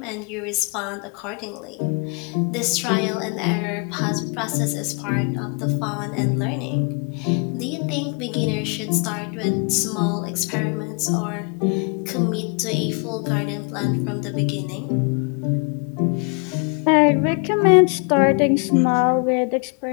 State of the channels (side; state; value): right; quieter; 35.3 dB